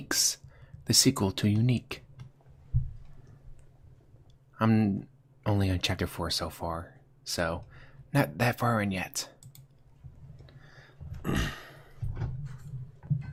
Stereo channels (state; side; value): identical; both; correlation 1.00